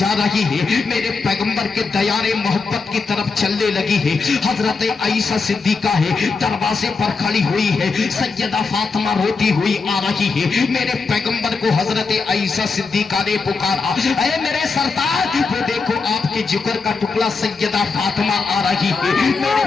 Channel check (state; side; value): quieter; right; 4.5 dB